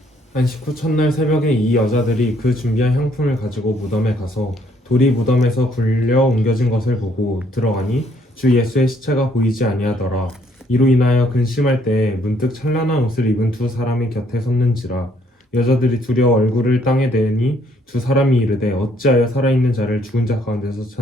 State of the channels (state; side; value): normal; both; correlation 0.66